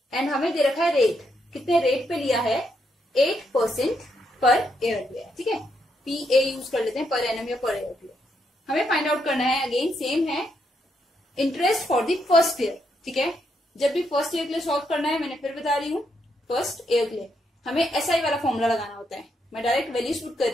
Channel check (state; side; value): normal; both; correlation 0.78